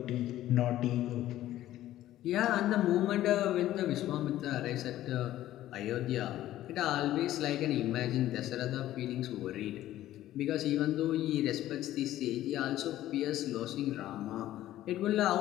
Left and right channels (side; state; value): right; quieter; 13.9 dB